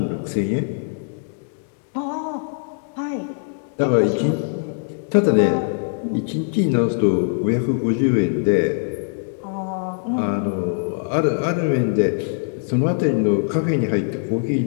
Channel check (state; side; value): silent; right; digital silence